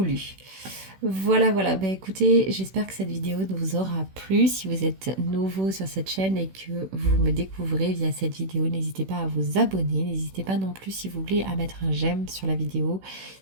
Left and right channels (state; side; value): late; left; 16 ms